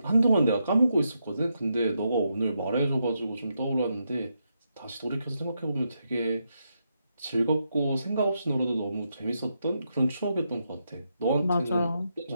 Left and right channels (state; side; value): inverted; both; correlation -0.82